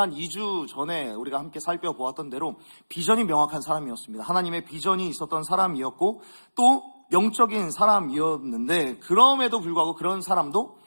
2주 전에 우리가 함께 살펴보았던 대로 비전이 명확한 사람이었습니다. 하나님의 비전이 있었던 사람이었고, 또 영적인 사람이었는데, 그럼에도 불구하고 그런 사람도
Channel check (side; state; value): both; inverted; correlation -1.00